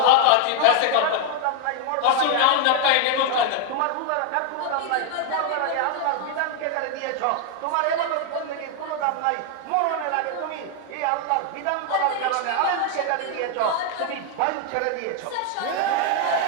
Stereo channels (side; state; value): both; different; correlation 0.00